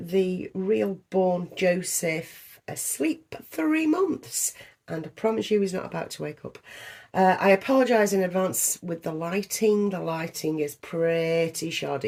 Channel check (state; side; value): identical; both; correlation 1.00